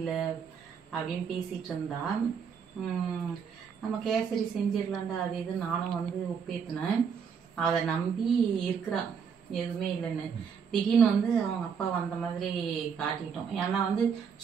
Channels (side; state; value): left; quieter; 6.7 dB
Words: அப்படின்னு பேசிகிட்டு இருந்தா. நம்ம கேசரி செஞ்சிடலாண்டா அது இது நானும் வந்து ஒப்பேற்றினேன். அதை நம்பி இருக்கிறா எதுவுமே இல்லைன்னு. திடீர்னு வந்து அவங்க அப்பா வந்த மாதிரி காட்டிட்டோம். ஏன்னா வந்து